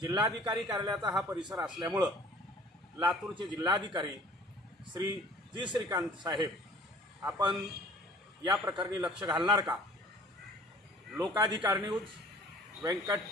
कार्यालयाचा हा परिसर असल्यामुळं लातूरचे जिल्हाधिकारी श्री जी श्रीकांत साहेब आपण या प्रकरणी लक्ष घालणार का? लोकाधिकार न्यूज, व्यंकट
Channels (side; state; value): both; normal; correlation 0.50